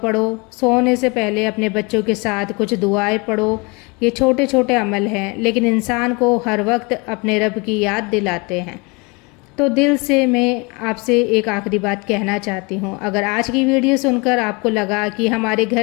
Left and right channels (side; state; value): right; quieter; 28.6 dB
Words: سونے سے پہلے اپنے بچوں کے ساتھ کچھ دعائیں پڑھو۔ یہ چھوٹے چھوٹے عمل ہیں، لیکن انسان کو ہر وقت اپنے رب کی یاد دلاتے ہیں۔ تو دل سے میں آپ سے ایک آخری بات کہنا چاہتی ہوں، اگر آج کی ویڈیو سن کر آپ کو لگا کہ ہمارے